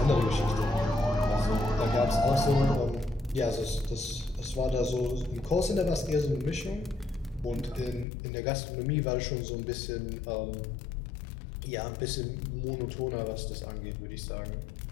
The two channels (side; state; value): right; drops out; at 8.1 s